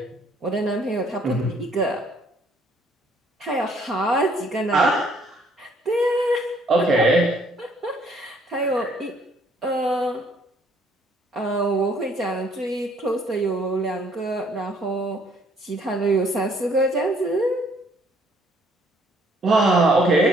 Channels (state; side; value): normal; both; correlation 0.64